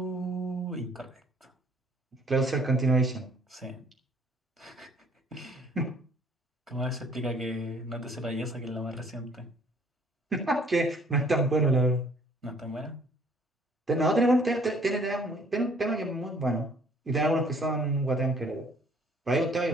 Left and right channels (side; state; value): both; normal; correlation 0.59